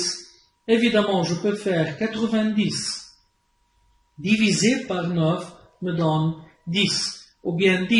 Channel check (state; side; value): identical; both; correlation 1.00